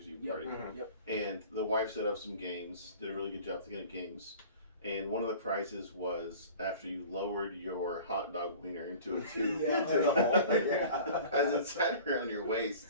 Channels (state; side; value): inverted; both; correlation -0.43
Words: Eve party, and the wife set up some games. Did a really good job thinking of games. And one of the prizes was after you lowered your hot dog wiener into a tube into the hole, as it sat around your